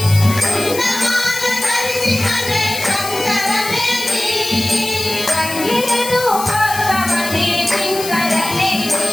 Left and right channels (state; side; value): noise; left; hiss, 8 dB below the sound